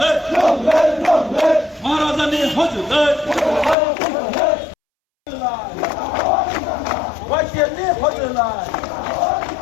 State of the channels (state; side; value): drops out; right; at 3.8 s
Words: महाराजा ने हजुर वाक्य ने हजुर